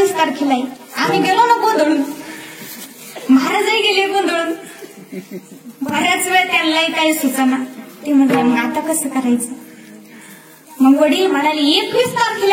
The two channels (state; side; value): identical; both; correlation 1.00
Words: तारखेला आहे. आम्ही गेलो ना गोंधळून, महाराजही गेले गोंधळून. बऱ्याच वेळ त्यांनाही काही सुचना. ते म्हटलं मग आता कसं करायचं? मग वडील म्हणाले 21